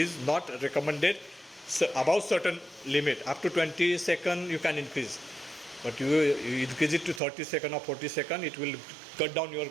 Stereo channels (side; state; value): left; drops out; at 7.2 s